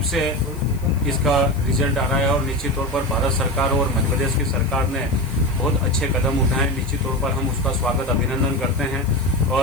से इसका रिजल्ट आ रहा है। और निश्चित तौर पर भारत सरकार और मध्य प्रदेश की सरकार ने बहुत अच्छे कदम उठाए। निश्चित तौर पर हम उसका स्वागत अभिनंदन करते हैं।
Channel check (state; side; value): noise; left; hiss, 22 dB below the sound